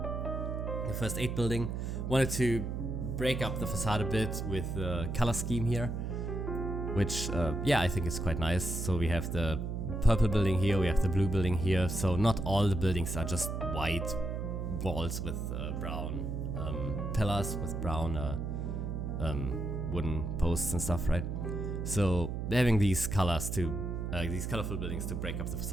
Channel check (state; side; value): noise; right; hum, 3 dB below the sound